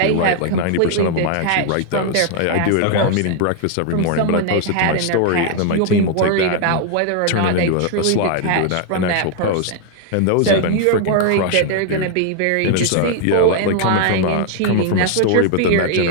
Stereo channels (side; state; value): both; different; correlation 0.00